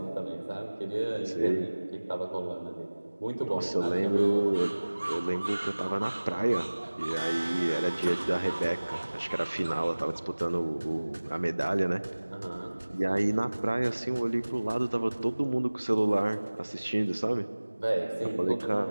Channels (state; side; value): inverted; both; correlation -1.00